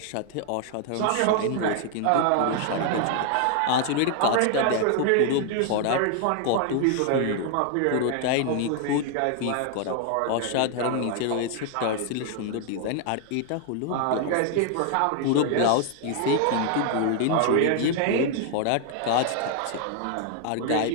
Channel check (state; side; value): different; both; correlation 0.00